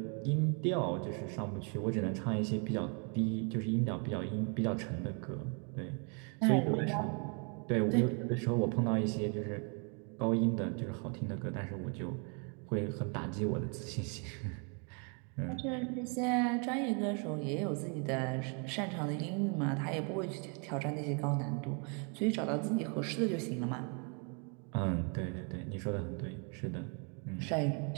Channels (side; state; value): left; quieter; 37.2 dB